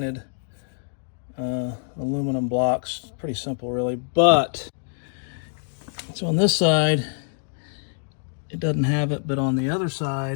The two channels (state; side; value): silent; right; 62 dB below the other